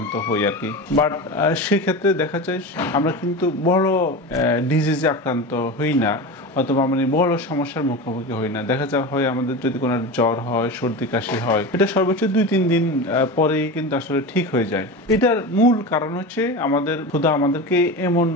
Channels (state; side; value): normal; both; correlation 0.26